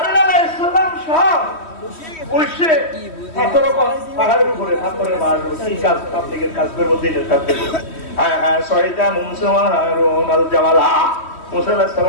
আলাইহিস সালাম সব উঠছে পাহাড়ের উপরে পাথরের মার কি কাজ পাবলিকের কাজ করবো দিনের কাজ করবো সহিতা মুসা হারুন আল জামালা মুসা আলাইহিস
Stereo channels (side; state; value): right; late; 3.1 ms